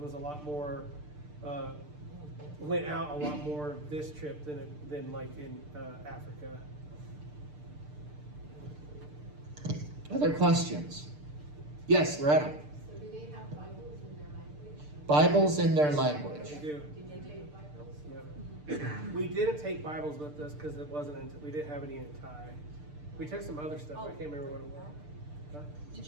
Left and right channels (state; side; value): late; left; 6.7 ms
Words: a lot more went out a lot more this trip than like in Africa. Other questions? Yes, Loretta. So do they have Bibles in their language? Bibles in their language. We do. Do they take Bibles? Yep. We didn't take Bibles with us because it wasn't we didn't have any in Thai. We took some other stuff. I can't remember what it was. Huh? Did